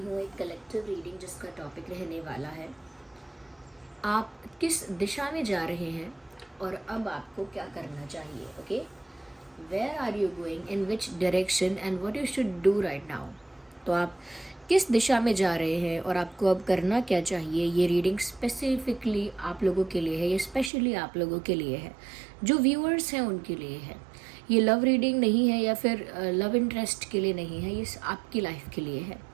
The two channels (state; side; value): drops out; left; at 20.7 s